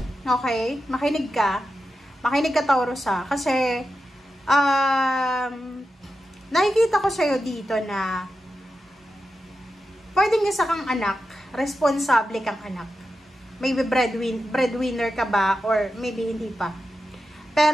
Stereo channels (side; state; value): both; normal; correlation 0.90